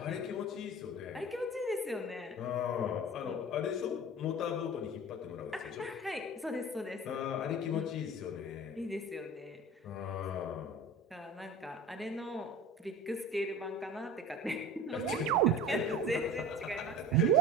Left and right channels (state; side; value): normal; both; correlation 0.36